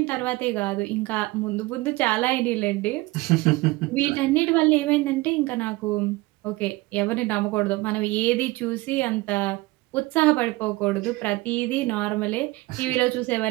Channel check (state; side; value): quieter; left; 20.9 dB